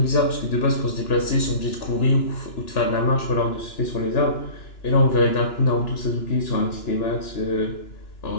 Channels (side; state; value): right; late; 2.9 ms